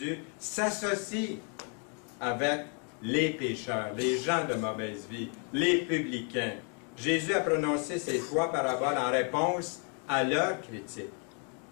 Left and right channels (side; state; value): right; quieter; 39.1 dB